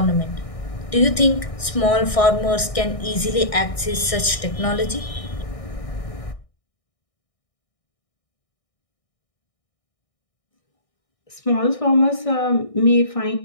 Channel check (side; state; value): right; late; 1.6 ms